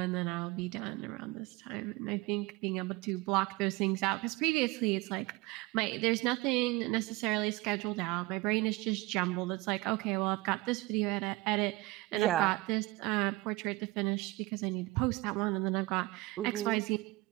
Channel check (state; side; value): quieter; left; 21.7 dB